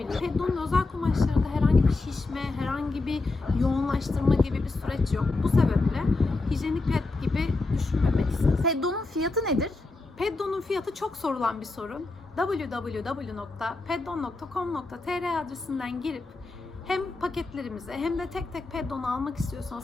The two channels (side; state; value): right; quieter; 3.3 dB